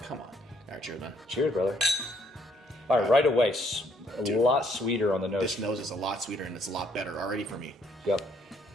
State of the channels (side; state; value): both; normal; correlation 0.67